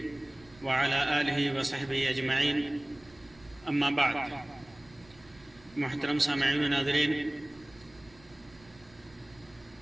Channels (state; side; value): noise; right; rumble, 26 dB below the sound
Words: وعلى آله وصحبه أجمعين اما بعد. محترم سامعین و ناظرین،